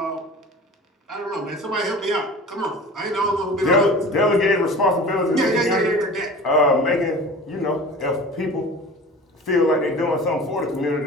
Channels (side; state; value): both; normal; correlation 0.38